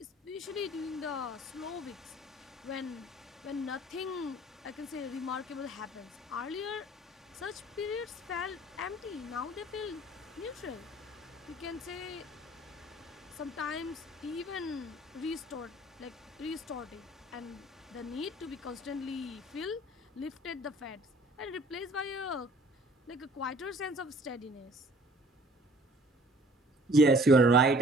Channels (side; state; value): both; normal; correlation 0.52